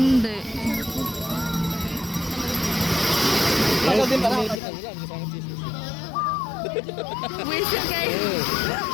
Baka din para. Whistle guys.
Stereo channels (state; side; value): drops out; right; at 4.6 s